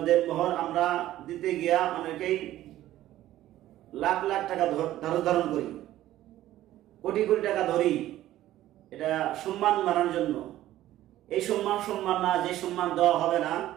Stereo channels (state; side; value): quieter; left; 14.1 dB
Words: দেন মোহর আমরা দিতে গিয়া অনেকেই লাখ লাখ টাকা ধারণ করি, কোটি কোটি টাকা ধরি, এটা সম্মান বাড়ানোর জন্য। এই সম্মান না, যে সম্মান দেওয়া হবে না,